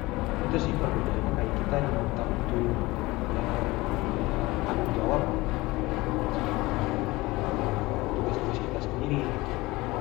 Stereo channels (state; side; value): quieter; right; 20.9 dB